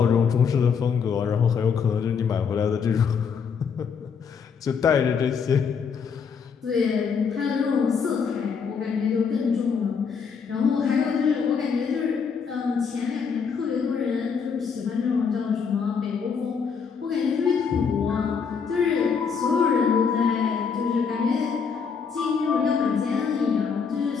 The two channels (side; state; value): right; quieter; 6.2 dB